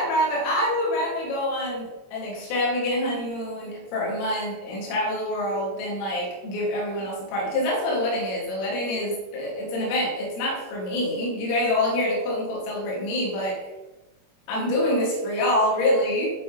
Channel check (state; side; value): late; right; 21 ms